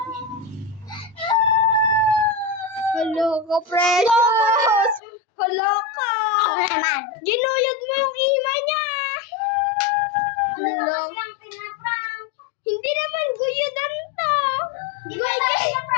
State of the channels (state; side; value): drops out; right; at 5.0 s